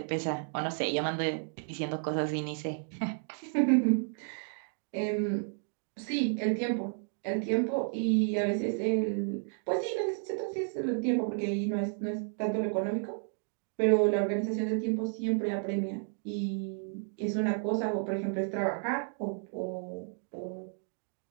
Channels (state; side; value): silent; left; 56 dB below the other